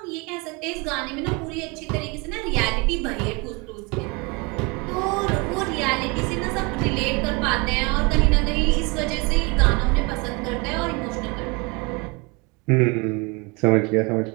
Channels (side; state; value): left; quieter; 28.4 dB